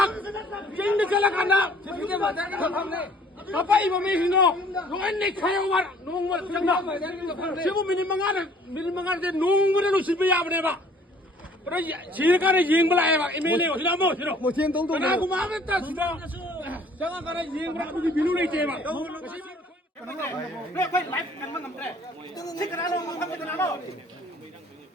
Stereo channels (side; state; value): both; normal; correlation 0.56